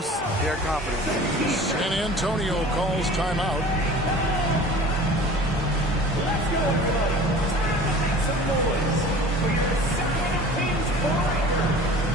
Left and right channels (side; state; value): both; normal; correlation 0.42